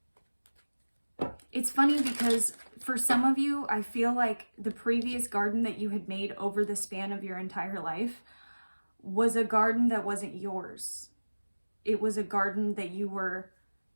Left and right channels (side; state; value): both; inverted; correlation -1.00